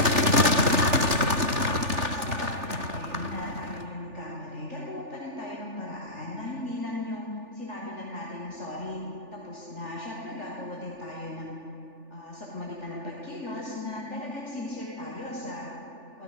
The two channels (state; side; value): late; left; 3.4 ms